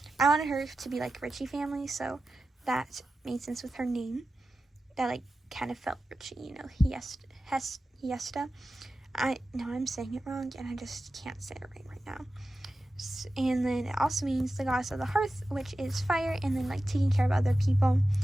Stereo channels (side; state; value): both; normal; correlation 0.93